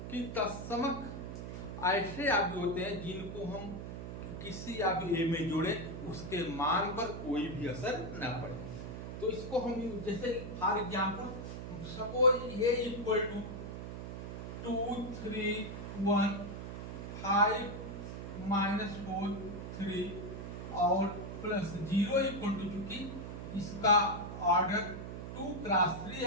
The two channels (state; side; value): noise; right; hum, 7 dB below the sound